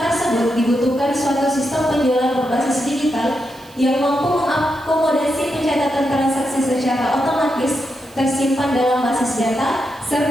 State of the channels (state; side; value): noise; right; hiss, 25 dB below the sound